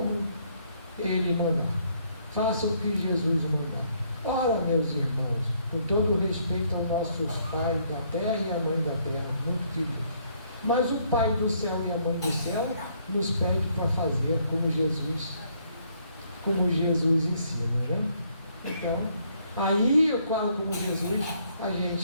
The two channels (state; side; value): inverted; both; correlation -0.69